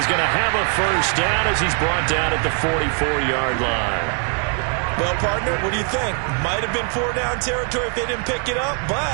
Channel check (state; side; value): quieter; left; 38.4 dB